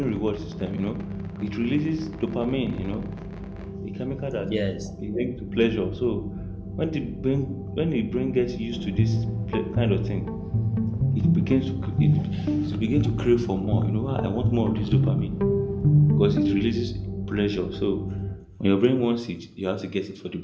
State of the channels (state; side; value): identical; both; correlation 1.00